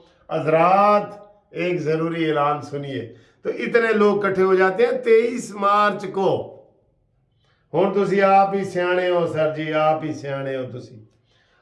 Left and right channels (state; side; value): identical; both; correlation 1.00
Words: حضرات ایک ضروری اعلان سنیے، تو اتنے لوگ کٹھے ہو جاتے ہیں 23 مارچ کو۔ ہوں تسی آپ ہی سیانے ہو سر جی، آپ ہی سیانے ہو تسی۔